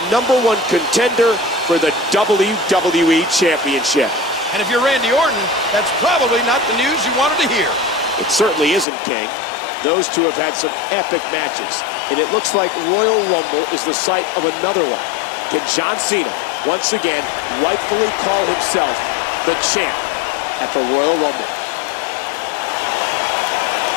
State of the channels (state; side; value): drops out; right; at 8.8 s